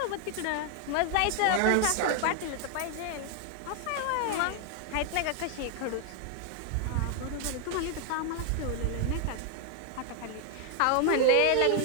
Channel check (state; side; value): different; both; correlation 0.00